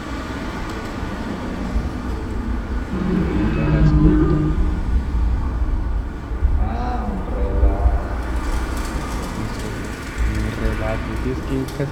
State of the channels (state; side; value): identical; both; correlation 1.00